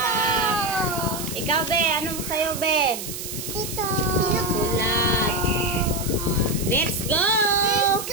Ikaw, Be. Anong sa'yo, Be? Ito. Sulat. Let's go! Let's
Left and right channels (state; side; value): noise; right; hiss, 8 dB below the sound